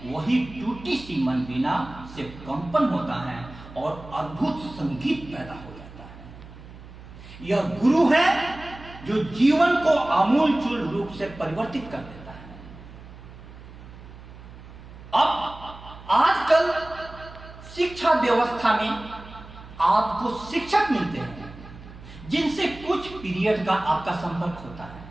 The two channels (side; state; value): right; noise; hum, 17 dB below the sound